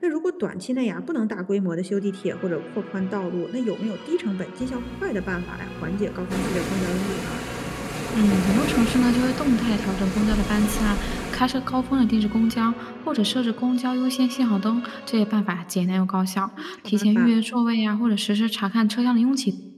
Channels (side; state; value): both; identical; correlation 1.00